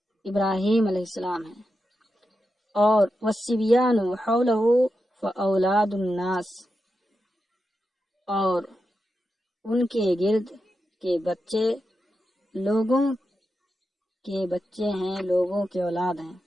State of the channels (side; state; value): both; normal; correlation 0.88